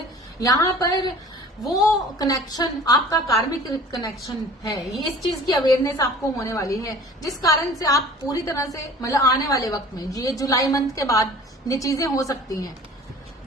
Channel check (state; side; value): normal; both; correlation 0.46